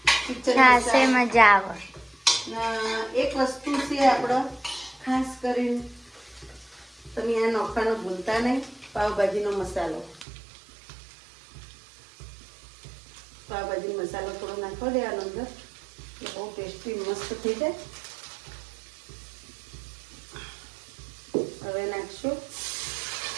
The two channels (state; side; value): drops out; left; at 10.2 s